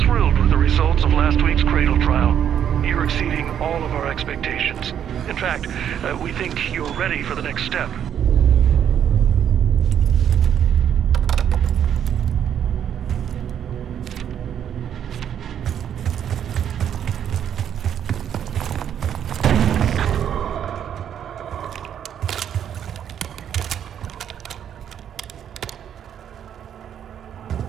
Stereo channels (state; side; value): quieter; left; 9.3 dB